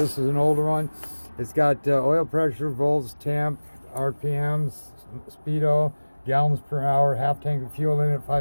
is an older one. It's got oil pressure, volts, temp, RPMs, speedo, gallons per hour, half tank of fuel in it,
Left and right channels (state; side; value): inverted; both; correlation -1.00